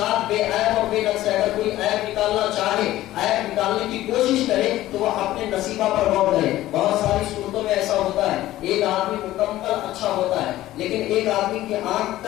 بے عیب اور بے نقص ہے، اگر کوئی عیب نکالنا چاہے، عیب نکالنے کی کوشش کرے تو وہ اپنے نصیبہ پر غور کرے۔ بہت ساری صورتوں میں ایسا ہوتا ہے، ایک آدمی مکمل اچھا ہوتا ہے لیکن ایک آدمی کی آنکھ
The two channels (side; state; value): right; quieter; 15.1 dB